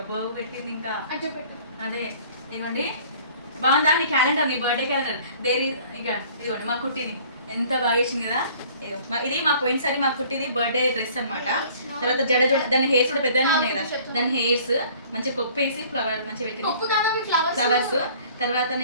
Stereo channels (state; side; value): inverted; both; correlation -0.52